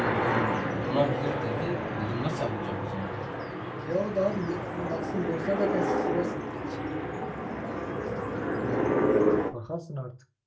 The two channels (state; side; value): identical; both; correlation 1.00